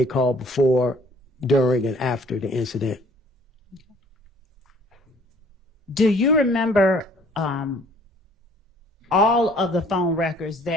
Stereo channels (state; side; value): normal; both; correlation 0.57